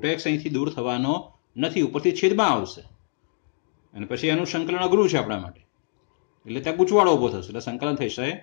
અહીંથી દૂર થવાનો નથી, ઉપરથી છેદમાં આવશે, અને પછી એનું સંકલન અઘરું છે આપણા માટે. એટલે ત્યાં ગૂંચવાડો ઉભો થશે, એટલે સંકલન થશે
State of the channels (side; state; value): right; silent; digital silence